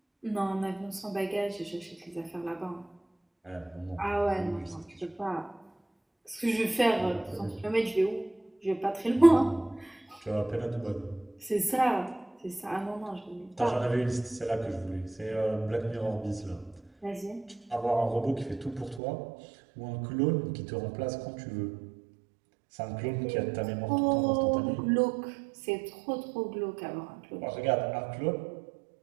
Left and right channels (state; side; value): drops out; left; at 19.0 s